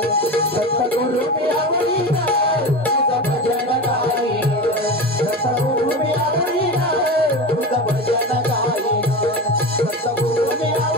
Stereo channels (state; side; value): normal; both; correlation 0.25